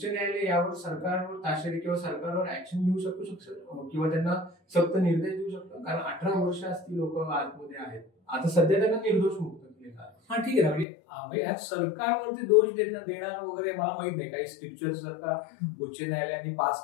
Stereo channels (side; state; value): right; drops out; at 10.9 s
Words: न्यायालय यावर सरकारवर ताशेरे किंवा सरकारवर ऍक्शन घेऊ शकतो किंवा त्यांना सक्त निर्देश देऊ शकतो, कारण 18 वर्ष ती लोक आतमध्ये आहेत. आता सध्या त्यांना निर्दोष मुक्त केलेलं आहे. हा ठीक आहे, म्हणजे सरकारवरती दोष देणार वगैरे मला माहित नाही. काही स्क्रिप्चर्स जर का उच्च न्यायालयाने पास